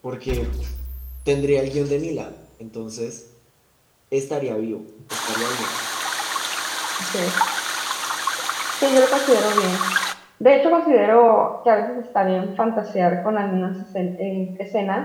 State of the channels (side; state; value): both; identical; correlation 1.00